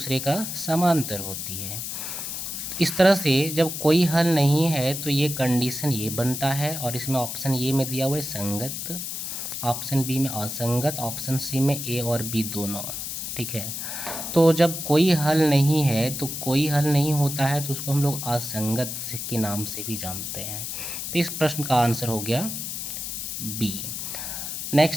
का समांतर होती है। इस तरह से जब कोई हल नहीं है तो ये कंडीशन ये बनता है, और इसमें ऑप्शन ए में दिया हुआ है संगत, ऑप्शन बी में असंगत, ऑप्शन सी में ए और बी दोनों। ठीक है, तो जब कोई हल नहीं है तो कोई हल नहीं होता है तो उसको हम लोग असंगत के नाम से भी जानते हैं। तो इस प्रश्न का आंसर हो गया बी।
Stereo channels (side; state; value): left; noise; hiss, 5 dB below the sound